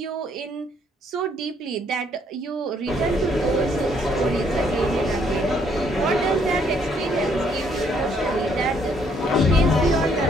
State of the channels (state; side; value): normal; both; correlation 0.68